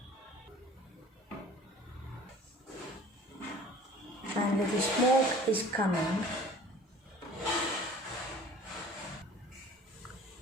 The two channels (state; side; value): normal; both; correlation 0.47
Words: And the smoke is coming.